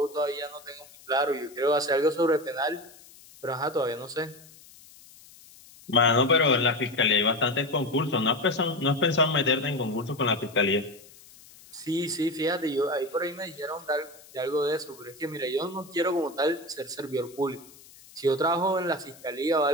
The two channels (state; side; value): noise; left; hiss, 23 dB below the sound